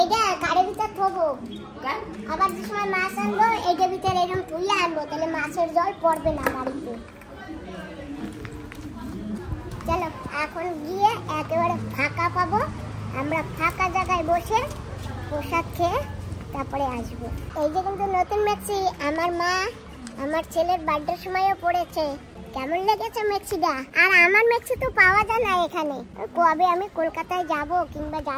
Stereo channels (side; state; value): both; identical; correlation 1.00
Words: গাড়ির ভিতর থবো, আবার যে সময় মাছ আনবো এইটার ভিতরে এরকম তুলে আনবো, তাহলে মাছের জল পড়বে না বাড়িতে। চলো এখন গিয়ে একেবারে ফাঁকা পাবো, আমরা ফাঁকা জায়গায় বসে প্রসাদ খেয়ে তারপরে আসবো। এই যে কিন্তু নতুন মেক্সি আমার মা আমার ছেলের বার্থডের সময়ও পড়েছে। কেমন লেগেছে মেক্সিটা? আর আমার মেক্সি তো পাওয়া যায় না এখানে। কবে আমি কলকাতায় যাব কিংবা